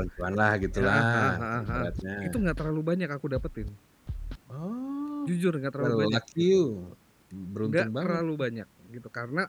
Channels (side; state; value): both; identical; correlation 1.00